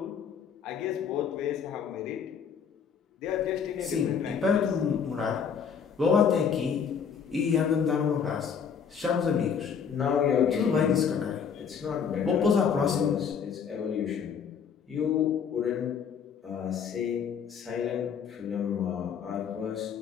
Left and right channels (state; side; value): quieter; right; 7.0 dB